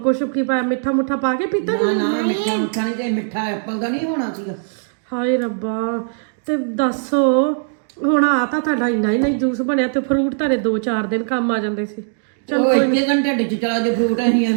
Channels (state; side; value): silent; left; digital silence